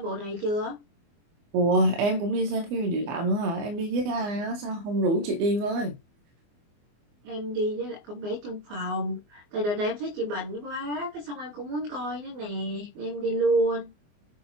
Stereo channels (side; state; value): left; late; 24 ms